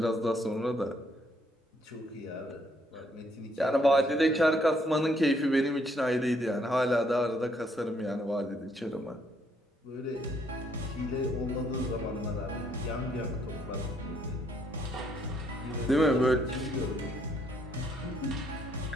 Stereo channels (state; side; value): normal; both; correlation 0.70